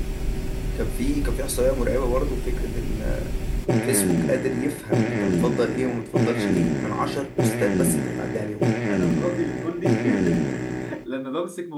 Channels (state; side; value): identical; both; correlation 1.00